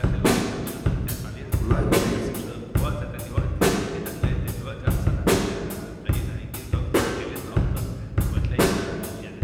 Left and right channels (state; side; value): identical; both; correlation 1.00